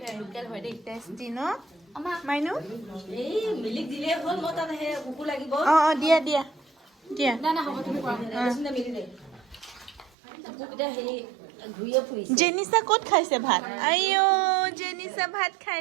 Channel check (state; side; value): drops out; left; at 10.1 s